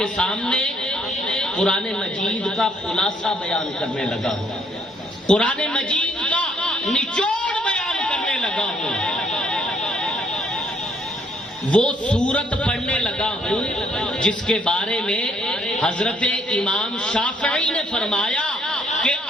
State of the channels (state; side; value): normal; both; correlation 0.67